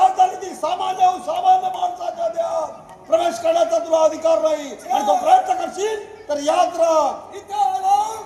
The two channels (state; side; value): identical; both; correlation 1.00